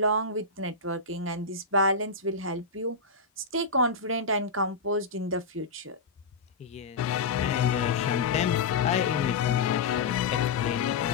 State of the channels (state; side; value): quieter; right; 4.1 dB